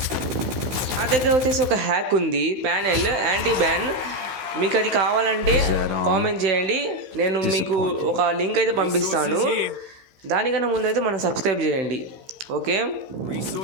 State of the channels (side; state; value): left; late; 16 ms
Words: నా దగ్గర వచ్చేసి ఒక హ్యాక్ ఉంది, ప్యానెల్ యాంటీ బ్యాన్. మీకు అది కావాలంటే కామెంట్ చేయండి. నేను మీకు ఒక లింక్ అయితే పంపిస్తాను. దానికన్నా ముందు అయితే మనం సబ్స్క్రైబ్ చేయండి. ఓకే,